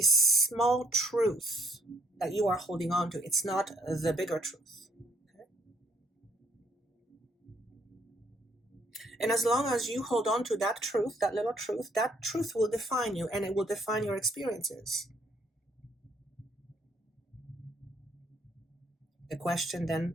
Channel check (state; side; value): normal; both; correlation 0.68